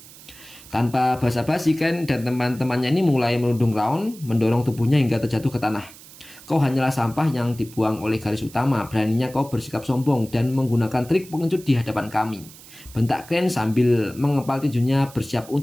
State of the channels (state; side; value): noise; right; hiss, 20 dB below the sound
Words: Tanpa basa-basi, Ken dan teman-temannya ini mulai menuding Raon, mendorong tubuhnya hingga terjatuh ke tanah. Kau hanyalah sampah yang dibuang oleh garis utama. Beraninya kau bersikap sombong dan menggunakan trik pengecut di hadapan kami, bentak Glenn sambil mengepal tinjunya bersiap